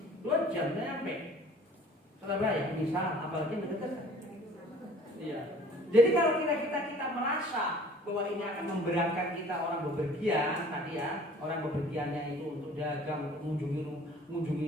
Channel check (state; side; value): normal; both; correlation 0.50